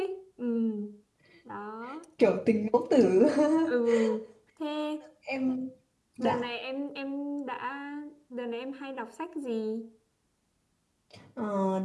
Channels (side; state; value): both; identical; correlation 1.00